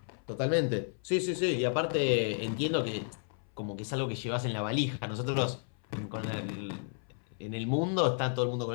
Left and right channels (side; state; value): right; silent; 56 dB below the other